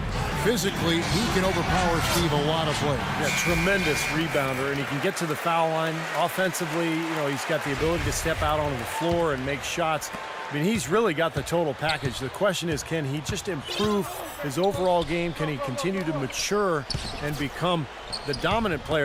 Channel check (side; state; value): both; identical; correlation 1.00